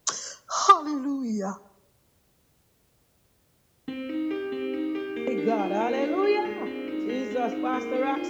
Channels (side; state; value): both; identical; correlation 1.00